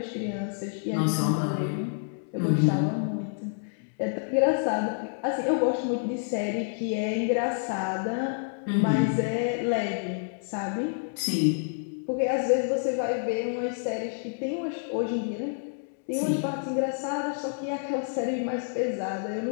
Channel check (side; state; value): right; silent; digital silence